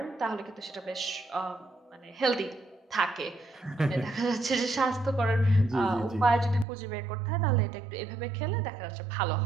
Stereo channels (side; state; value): left; drops out; at 6.7 s